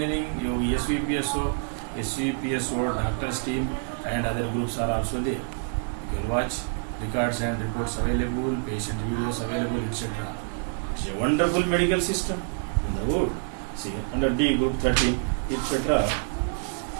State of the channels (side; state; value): left; silent; 59 dB below the other